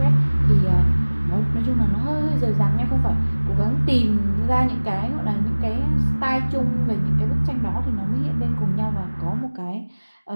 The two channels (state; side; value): inverted; both; correlation -1.00